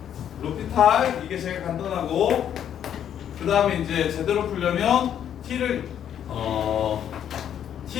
로피탈 이게 제일 간단하고 그 다음에 이제 제대로 풀려면 t를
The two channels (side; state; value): right; quieter; 9.6 dB